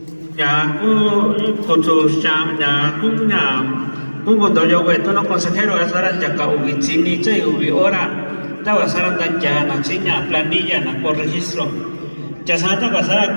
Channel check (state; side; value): inverted; both; correlation -1.00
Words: ya kundo yo que tono consejero asaran ya ka ubichini che ubi ora ta asaran dan ya na chiña planilla na por registro ya santa